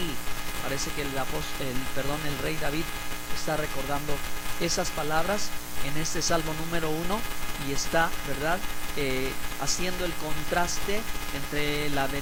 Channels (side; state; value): both; identical; correlation 1.00